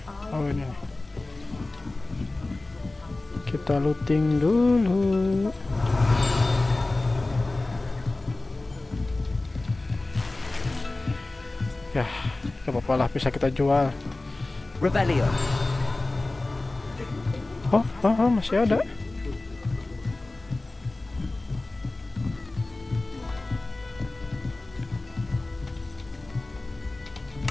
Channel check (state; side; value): quieter; right; 3.0 dB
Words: Oh ini nih. Kita looting dulu. Ya, gak apa-apa lah, bisa kita jual. Revelio. Oh, masih ada.